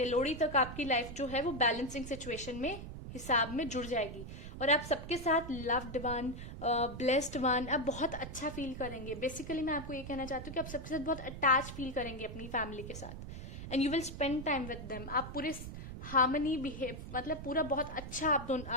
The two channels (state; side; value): noise; right; rumble, 9 dB below the sound